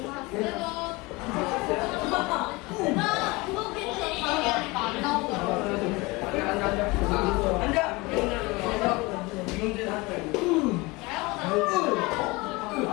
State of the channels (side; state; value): right; quieter; 24.0 dB